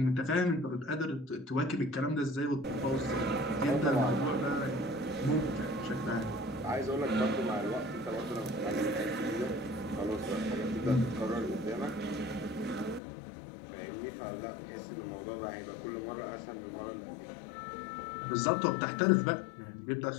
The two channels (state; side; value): drops out; right; at 13.0 s